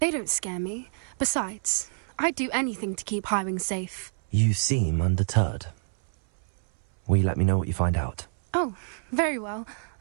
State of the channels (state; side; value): silent; left; 60 dB below the other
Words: They don't scare me. Besides, I'd do anything to keep Highwing safe. You seem undeterred. Will you let me know what you find out? Oh, very well.